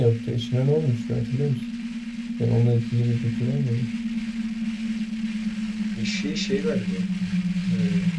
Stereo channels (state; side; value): identical; both; correlation 1.00